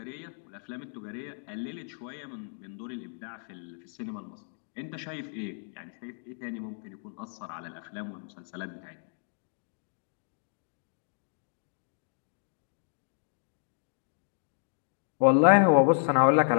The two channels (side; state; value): right; silent; 57 dB below the other